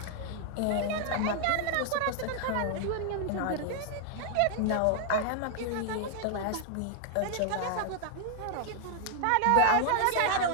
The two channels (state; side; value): different; both; correlation 0.00